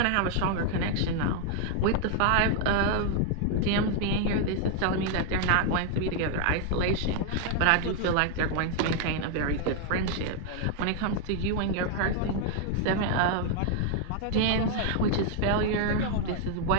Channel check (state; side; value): different; both; correlation 0.00